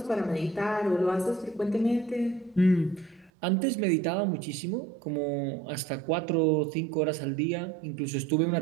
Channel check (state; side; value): drops out; left; at 3.3 s